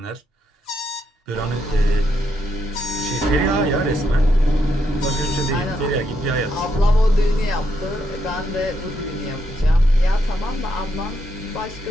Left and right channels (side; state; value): both; normal; correlation 0.79